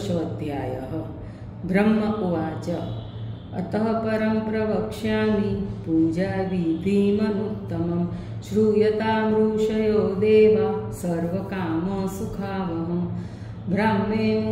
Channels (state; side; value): identical; both; correlation 1.00